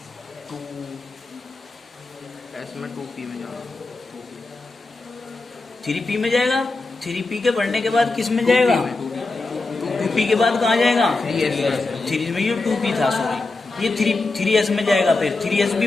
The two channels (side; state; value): right; quieter; 3.4 dB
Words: 2s में 2p में जाएगा, 3p में जाएगा। 3p के भरने के बाद किस में जाएगा? 2p के बाद कहाँ जाएगा? 3 में। ये 2p था, सॉरी, ये 3s में जाएगा। फिर 3s